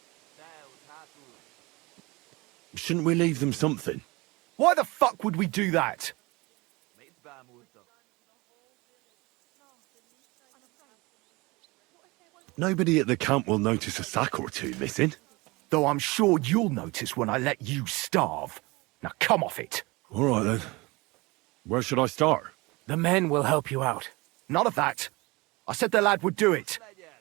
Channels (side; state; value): left; quieter; 23.8 dB